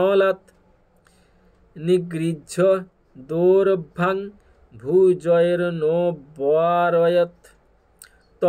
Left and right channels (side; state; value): both; identical; correlation 1.00